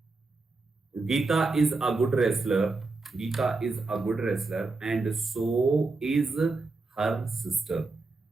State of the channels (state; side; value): quieter; left; 3.6 dB